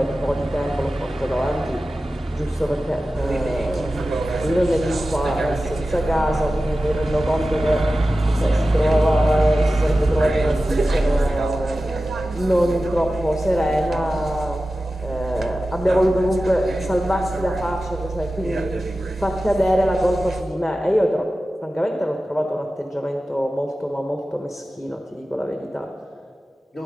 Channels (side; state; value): both; normal; correlation 0.94